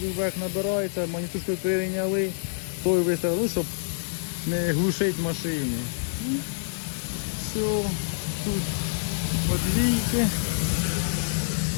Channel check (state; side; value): silent; right; digital silence